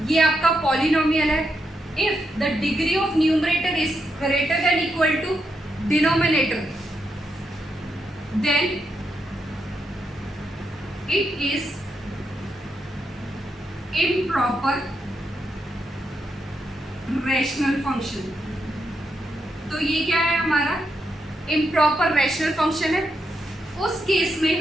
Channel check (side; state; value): both; normal; correlation 0.83